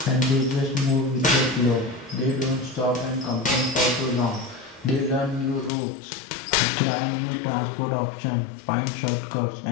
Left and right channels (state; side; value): drops out; right; at 5.7 s